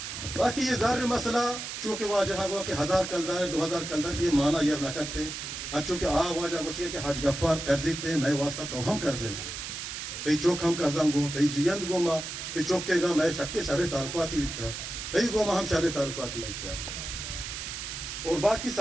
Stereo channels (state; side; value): noise; right; hiss, 7 dB below the sound